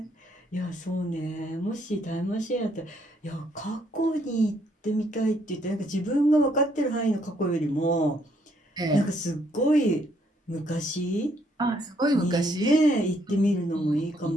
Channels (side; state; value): both; normal; correlation 0.70